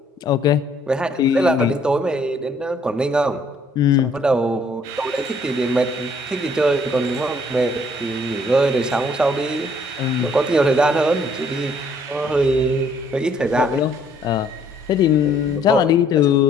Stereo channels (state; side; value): normal; both; correlation 0.63